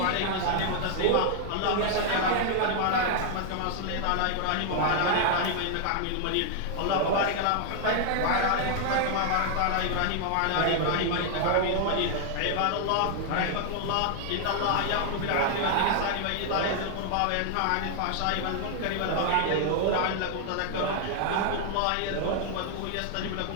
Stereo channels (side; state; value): both; different; correlation 0.00